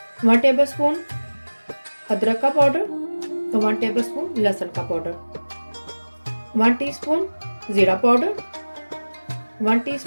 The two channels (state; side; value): inverted; both; correlation -1.00